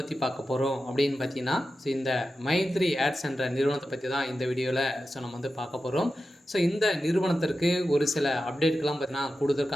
பார்க்க போகிறோம் அப்படின்னு பார்த்தீங்கன்னா, இந்த மைத்ரி ஆட்ஸ் என்ற நிறுவனத்தை பற்றி தான் இந்த வீடியோவில் நம்ம வந்து பார்க்க போகிறோம். இந்த நிறுவனத்திற்கு ஒரு சில அப்டேட்கள்லாம் பார்த்தீங்கன்னா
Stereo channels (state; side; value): normal; both; correlation 0.92